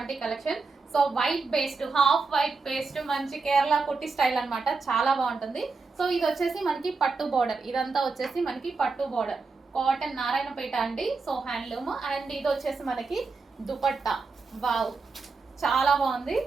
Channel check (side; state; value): left; quieter; 4.3 dB